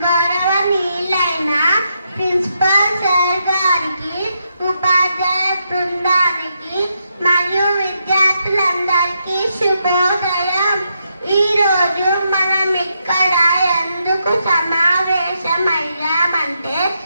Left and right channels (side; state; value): both; inverted; correlation -0.81